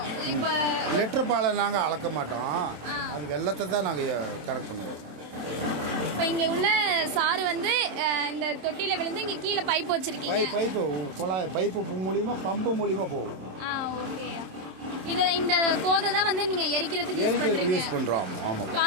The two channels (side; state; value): left; late; 27 ms